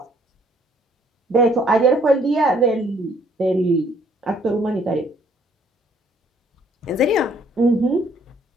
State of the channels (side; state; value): both; normal; correlation 0.63